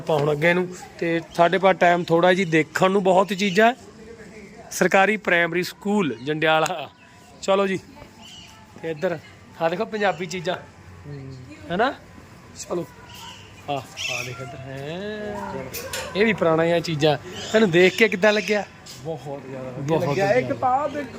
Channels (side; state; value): both; identical; correlation 1.00